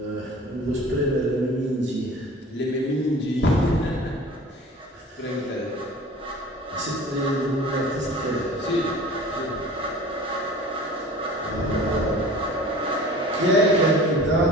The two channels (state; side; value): normal; both; correlation 0.42